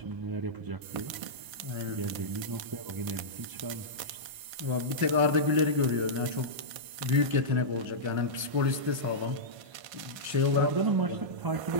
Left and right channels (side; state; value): left; late; 1.5 ms